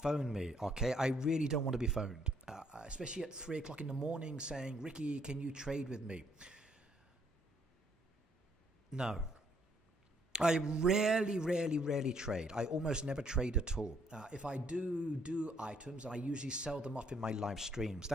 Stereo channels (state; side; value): normal; both; correlation 0.68